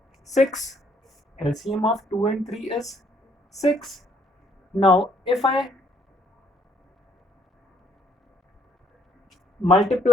6. LCM of 2 and 3 is 6. Now if I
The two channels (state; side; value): normal; both; correlation 0.65